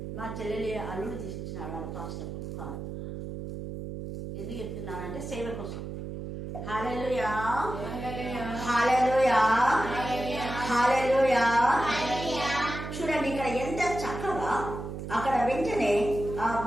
మా చెల్లెలి అల్లుడు తీసిచ్చినాడు వాళ్ళ పాస్టర్ కారు. ఎందుకు చెప్తున్నానంటే సేవ కోసం. హల్లెలూయా హల్లెలూయా హల్లెలూయా. చూడండి ఇక్కడ ఎంత చక్కగా అక్కడ వెంటనే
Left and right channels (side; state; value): right; noise; hum, 7 dB below the sound